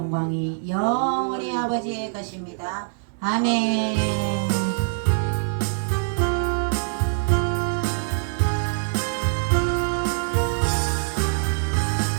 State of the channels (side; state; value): left; silent; digital silence